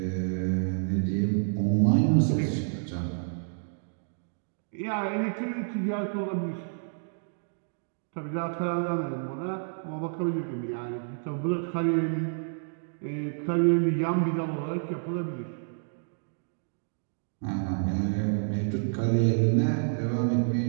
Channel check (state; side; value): silent; left; digital silence